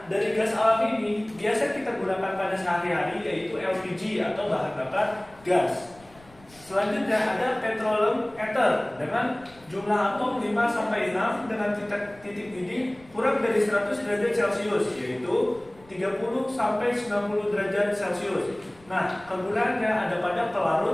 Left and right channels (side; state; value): left; noise; rumble, 26 dB below the sound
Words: dari gas alam ini biasa kita gunakan pada sehari-hari yaitu LPG atau bahan bakar gas. Selanjutnya ada petroleum ether dengan jumlah atom 5 sampai 6 dengan titik didih kurang dari 100 derajat Celcius yaitu 30 sampai 90 derajat Celcius. Nah, kegunaannya ada pada